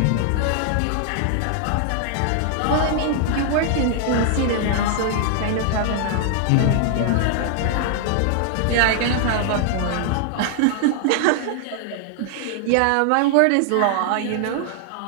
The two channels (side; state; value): both; different; correlation 0.00